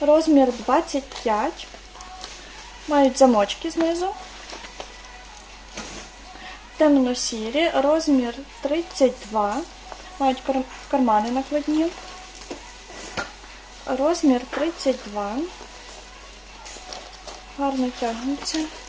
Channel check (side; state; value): both; identical; correlation 1.00